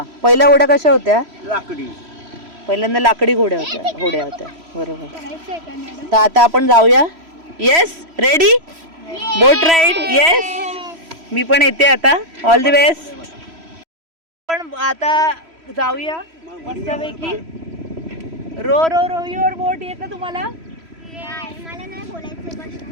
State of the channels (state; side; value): late; left; 3.0 ms